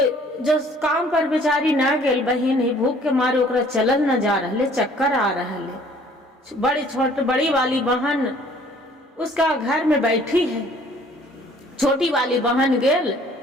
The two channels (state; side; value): normal; both; correlation 0.56